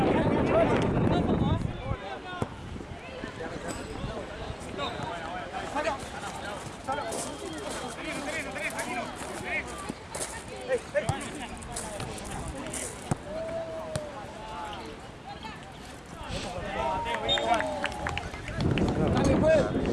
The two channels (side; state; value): both; identical; correlation 1.00